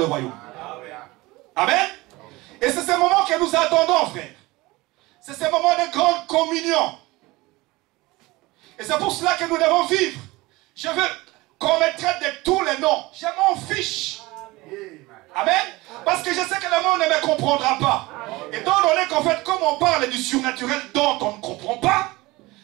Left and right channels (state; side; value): quieter; left; 21.3 dB